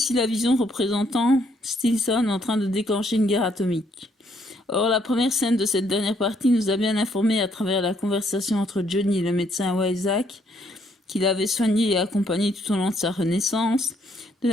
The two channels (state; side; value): normal; both; correlation 0.70